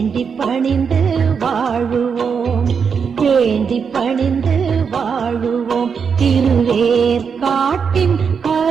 பணிந்து வாழுவோம். வேண்டி பணிந்து வாழுவோம். திருவேற்காட்டின்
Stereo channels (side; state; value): left; quieter; 6.3 dB